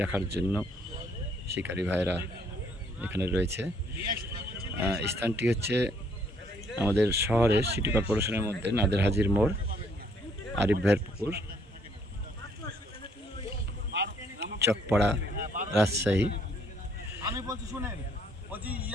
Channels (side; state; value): both; normal; correlation 0.65